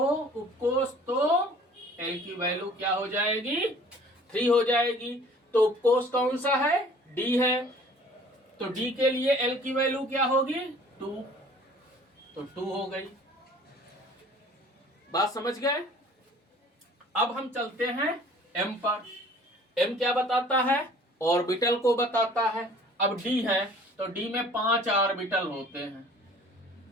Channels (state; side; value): normal; both; correlation 0.51